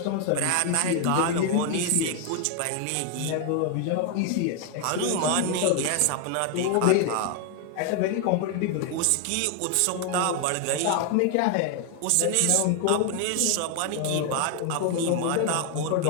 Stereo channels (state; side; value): different; both; correlation 0.01